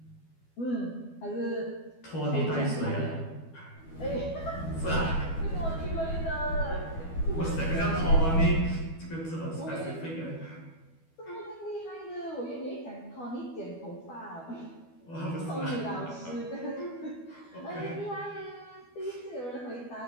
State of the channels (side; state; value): right; late; 12 ms